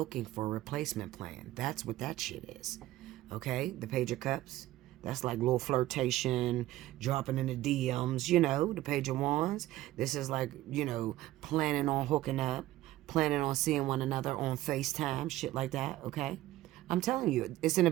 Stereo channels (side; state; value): left; quieter; 15.7 dB